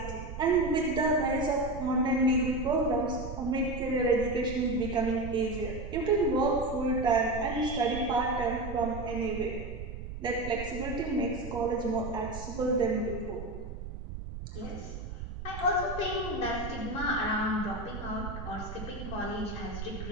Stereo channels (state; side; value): noise; right; rumble, 8 dB below the sound